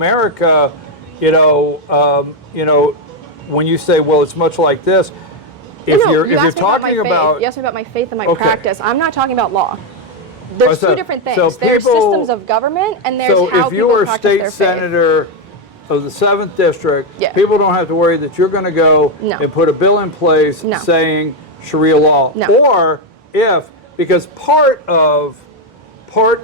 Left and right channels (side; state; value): both; normal; correlation 0.04